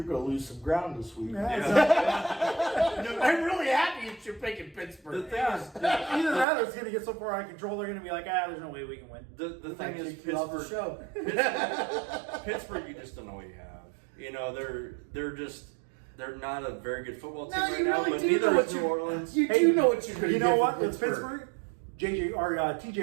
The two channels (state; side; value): drops out; left; at 6.5 s